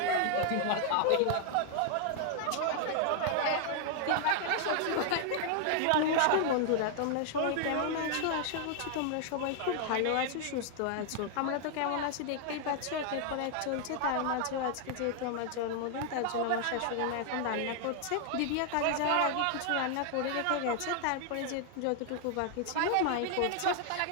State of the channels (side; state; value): both; different; correlation 0.00